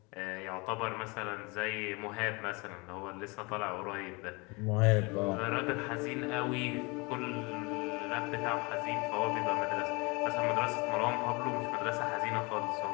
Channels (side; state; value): right; quieter; 27.7 dB